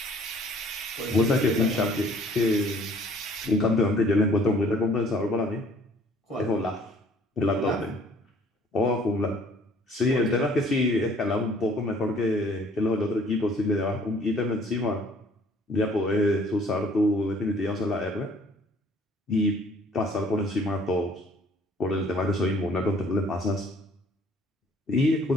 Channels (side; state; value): both; normal; correlation 0.57